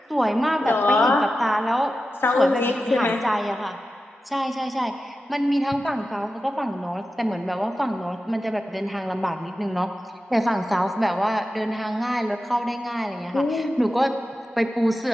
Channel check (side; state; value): both; normal; correlation 0.92